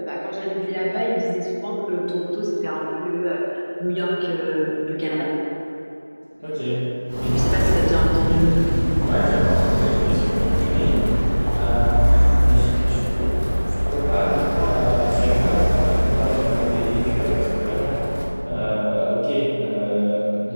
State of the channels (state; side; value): inverted; both; correlation -1.00